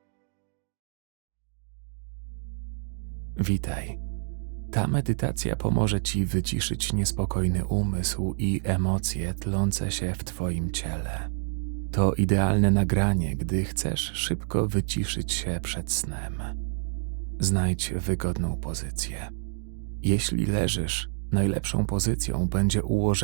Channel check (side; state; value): left; silent; digital silence